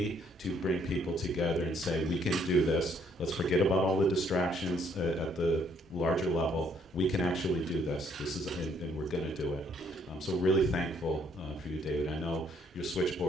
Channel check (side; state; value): both; normal; correlation 0.67